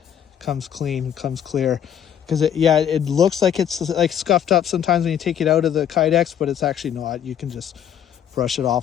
clean, comes clear. Because it looks like it's like scuffed up sometimes when you take it out of the Kydex, but it's actually not. You can just brush it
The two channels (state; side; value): quieter; right; 9.4 dB